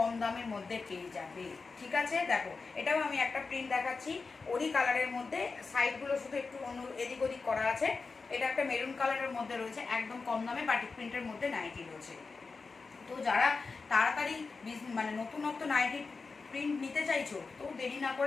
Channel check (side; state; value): right; quieter; 4.4 dB